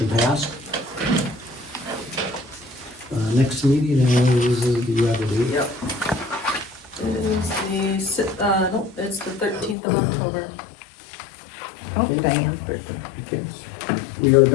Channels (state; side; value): drops out; right; at 9.8 s